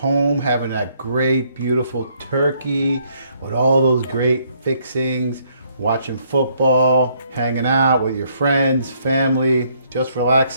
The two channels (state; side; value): inverted; both; correlation -0.68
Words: having that great, beautiful turkey with all those great fixings, watching football, hanging out with your friends, family, just